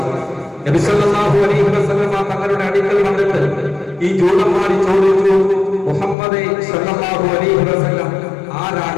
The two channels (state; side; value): drops out; right; at 6.2 s